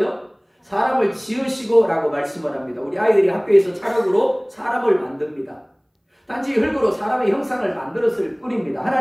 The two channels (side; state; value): both; identical; correlation 1.00